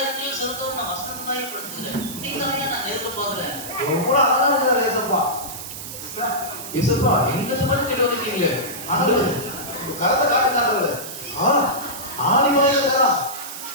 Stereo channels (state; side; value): noise; right; hiss, 10 dB below the sound